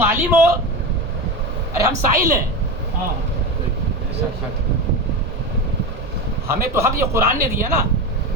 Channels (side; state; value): both; normal; correlation 0.21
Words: عالم ہو, ارے ہم سائل ہیں. ہمیں تو حق یہ قرآن نے دیا نا,